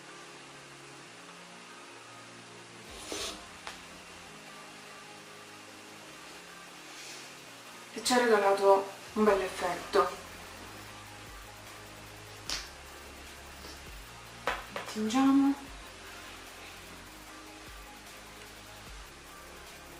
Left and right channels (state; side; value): identical; both; correlation 1.00